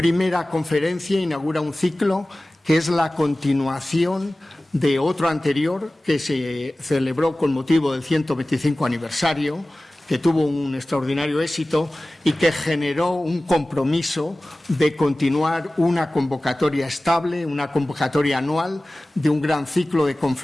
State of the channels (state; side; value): normal; both; correlation 0.97